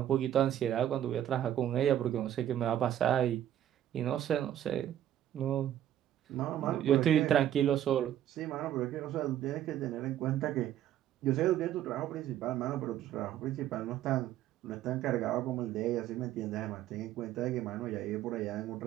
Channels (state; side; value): quieter; left; 11.5 dB